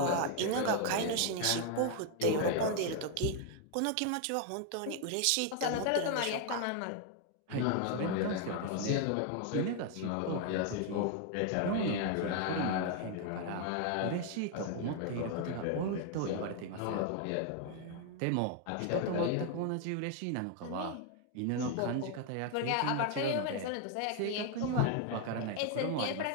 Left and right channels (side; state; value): both; different; correlation 0.00